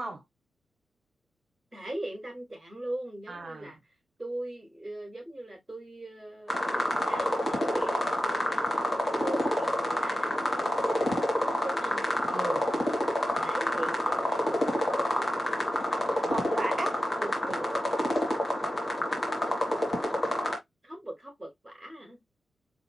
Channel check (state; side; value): normal; both; correlation 0.92